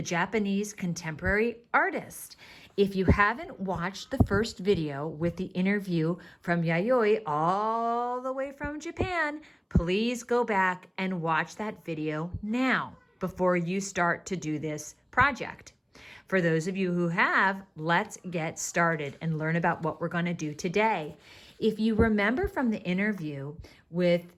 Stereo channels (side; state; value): both; identical; correlation 1.00